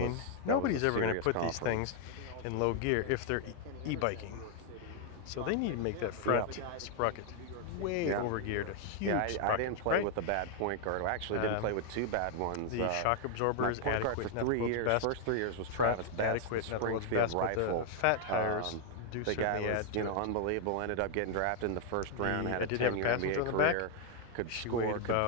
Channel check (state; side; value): different; both; correlation 0.00